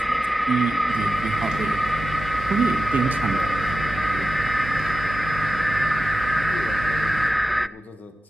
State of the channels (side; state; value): both; normal; correlation 0.92